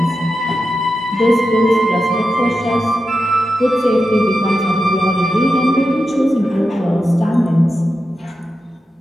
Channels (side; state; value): both; normal; correlation 0.90